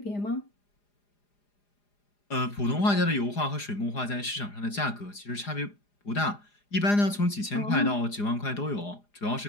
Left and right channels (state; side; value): late; right; 4.9 ms